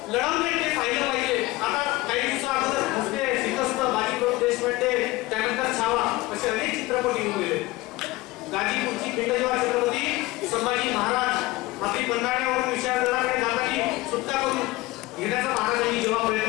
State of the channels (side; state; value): right; quieter; 20.0 dB